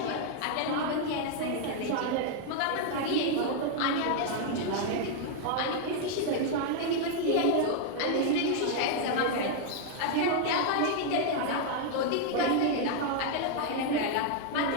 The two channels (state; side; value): different; both; correlation 0.00